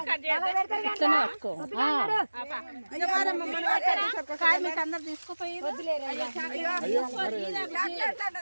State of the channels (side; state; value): both; inverted; correlation -1.00